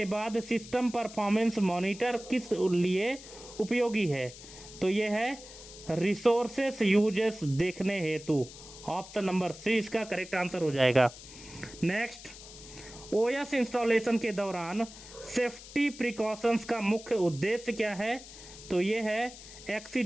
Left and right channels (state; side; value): noise; left; hiss, 16 dB below the sound